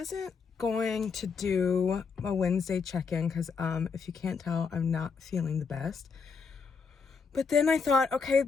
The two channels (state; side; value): quieter; right; 5.4 dB